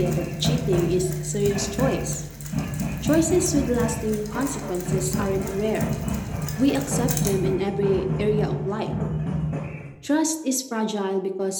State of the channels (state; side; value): identical; both; correlation 1.00